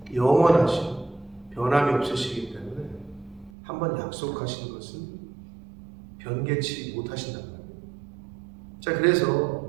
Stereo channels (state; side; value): drops out; left; at 3.5 s